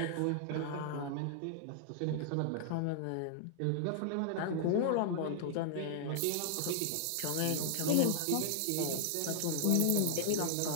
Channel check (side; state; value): both; different; correlation -0.01